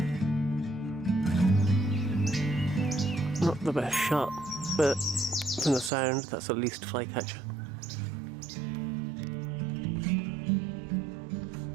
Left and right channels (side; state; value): left; drops out; at 5.9 s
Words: the best shot, but from the sound, that's at least flycatcher.